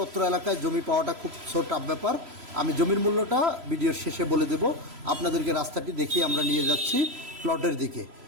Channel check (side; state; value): left; late; 3.0 ms